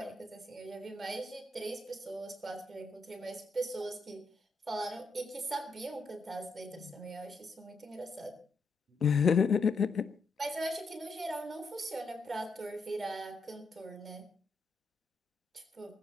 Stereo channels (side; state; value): right; quieter; 3.4 dB